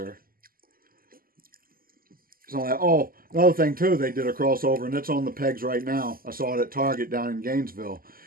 So another thing too, they did a crossover, and it's on the pegs right now. I saw it at Target down in Gainesville.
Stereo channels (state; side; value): late; left; 0.42 ms